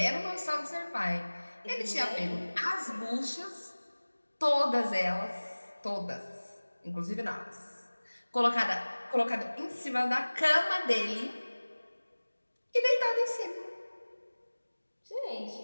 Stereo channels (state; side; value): inverted; both; correlation -1.00